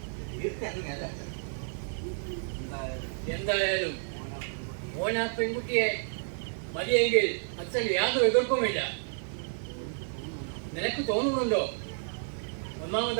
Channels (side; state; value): left; silent; 57 dB below the other